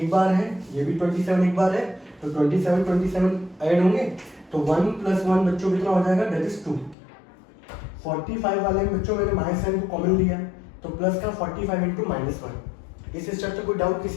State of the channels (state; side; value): drops out; right; at 7.0 s